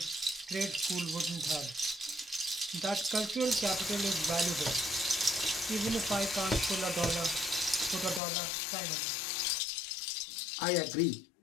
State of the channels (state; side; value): drops out; right; at 8.2 s